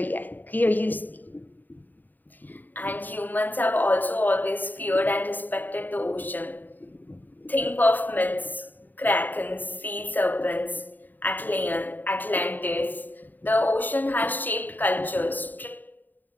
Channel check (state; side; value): late; right; 0.088 ms